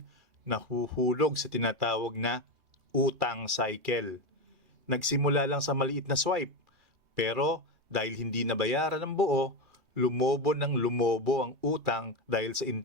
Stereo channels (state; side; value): late; left; 2.4 ms